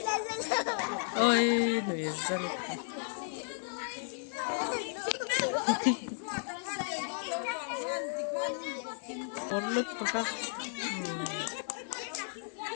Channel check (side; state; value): right; silent; 55 dB below the other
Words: ôi người dân bốn lúc các